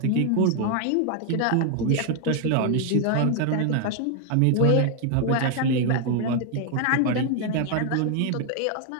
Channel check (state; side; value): different; both; correlation 0.00